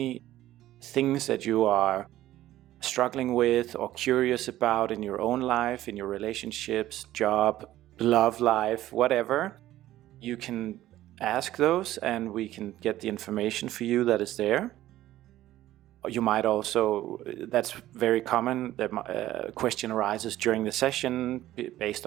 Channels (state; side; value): quieter; left; 14.4 dB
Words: things that you are struggling with or curious about in your own life, in your relationships, job, love life, whatever, you can ask those and we can get the information for you that is there. You might also, that's very common, the question arises during the session based